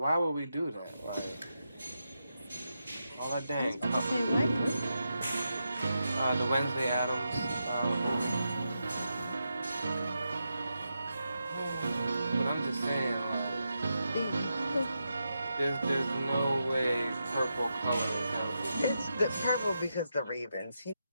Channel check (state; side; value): inverted; both; correlation -0.86